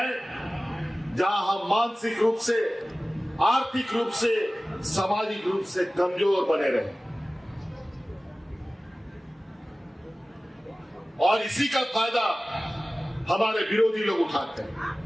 जहां हम मानसिक रूप से, आर्थिक रूप से, सामाजिक रूप से कमजोर बने रहे। और इसी का फायदा हमारे विरोधी लोग उठाते हैं।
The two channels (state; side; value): normal; both; correlation 0.97